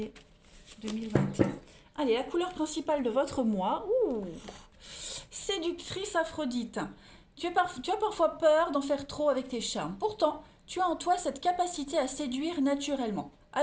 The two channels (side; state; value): both; identical; correlation 1.00